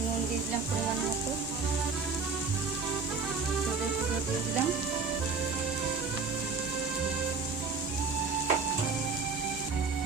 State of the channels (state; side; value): quieter; left; 4.7 dB